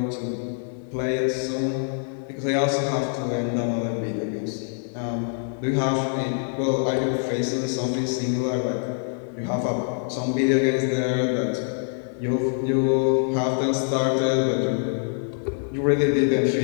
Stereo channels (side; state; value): right; silent; digital silence